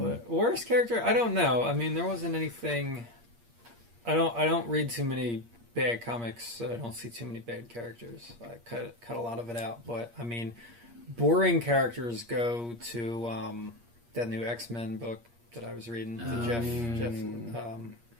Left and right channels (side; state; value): left; late; 8.5 ms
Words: worst character, I don't know. I mean, there wasn't anything. I don't read too many bad comics, so I don't see too many bad characters. I cut a lot of it out. But I mean, boring characters go to that new X-Men book that I was reading, the Jeff